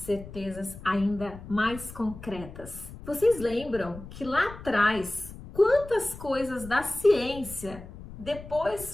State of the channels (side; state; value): left; noise; rumble, 14 dB below the sound